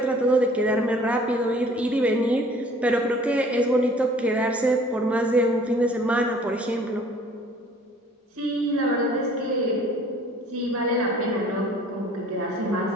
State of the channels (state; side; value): normal; both; correlation 0.52